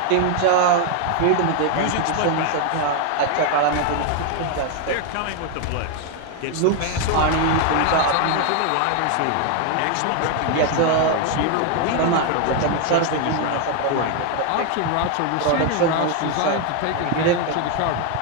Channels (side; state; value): both; different; correlation 0.01